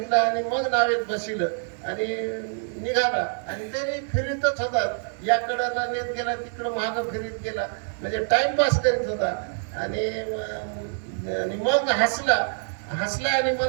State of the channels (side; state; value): left; silent; digital silence